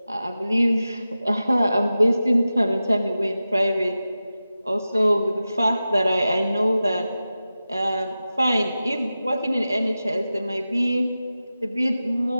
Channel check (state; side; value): inverted; both; correlation -0.94